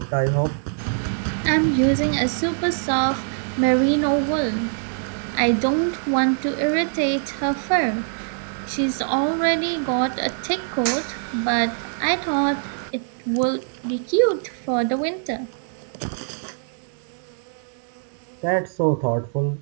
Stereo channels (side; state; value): left; silent; digital silence